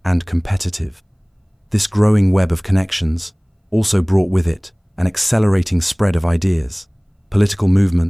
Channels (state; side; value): identical; both; correlation 1.00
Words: and competitive. This growing web of connections also brought with it an accelerating spread of ideas. Political